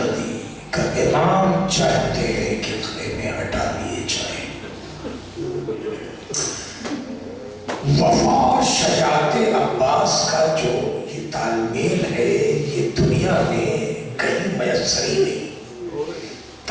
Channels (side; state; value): both; identical; correlation 1.00